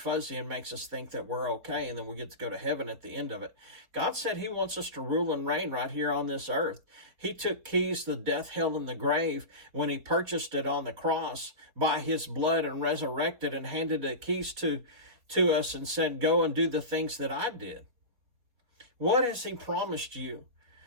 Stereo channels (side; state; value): left; late; 4.4 ms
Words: and makes us think that we're okay and then we get to go to heaven at the end of it. God said he wants us to rule and reign right here on this earth. He took keys to death, hell, and the grave when he purchased it on the cross by his blood and resurrected and handed the keys to us and said, go and do the things that I did. What has he promised you